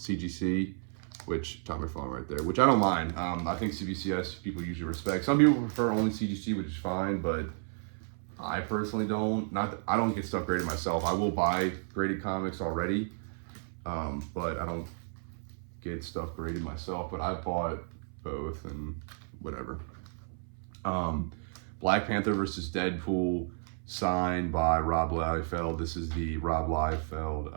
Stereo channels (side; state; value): left; silent; 56 dB below the other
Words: which Todd McFarlane right there, which I don't mind. I think CBCS people usually respect. Some people prefer only CGC, which is fine, but I personally don't. I don't get stuff graded myself. I will buy graded comics already, but I don't get stuff graded myself. But I bought both and whatever. Black Panther versus Deadpool, signed by Rob Liefeld. This is the Rob Liefeld